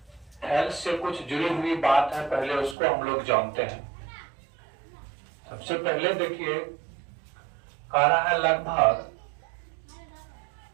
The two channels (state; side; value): drops out; left; at 2.8 s